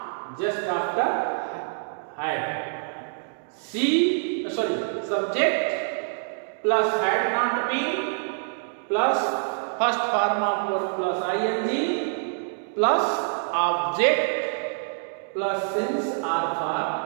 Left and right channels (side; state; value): left; silent; digital silence